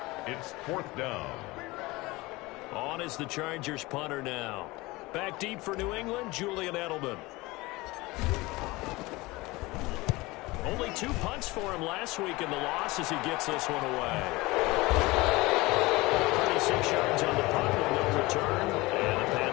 It's fourth down. On is the Chargers punter now. Back deep for New England, Julian Edelman. Only 2 punts for him last week in the loss as he gets this one away. 36 yards on the punt with no return. And the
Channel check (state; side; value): quieter; right; 21.7 dB